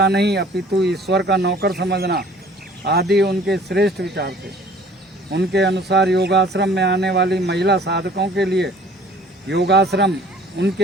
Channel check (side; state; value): both; normal; correlation 0.52